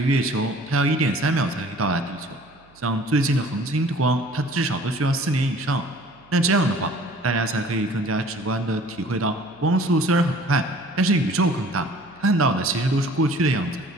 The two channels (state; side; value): noise; right; hum, 29 dB below the sound